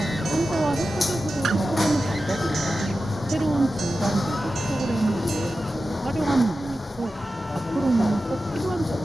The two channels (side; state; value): both; normal; correlation 0.93